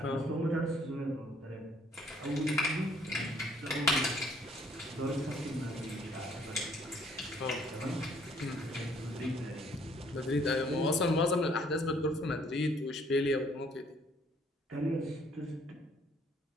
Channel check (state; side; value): normal; both; correlation 0.63